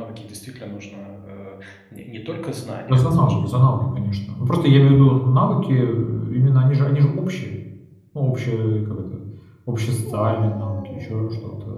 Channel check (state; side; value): identical; both; correlation 1.00